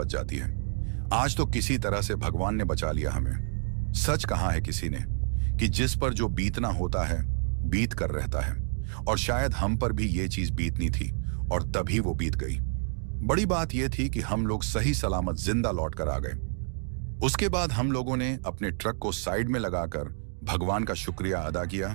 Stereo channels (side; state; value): left; silent; 59 dB below the other